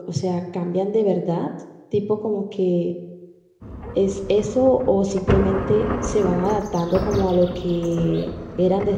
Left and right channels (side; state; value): both; identical; correlation 1.00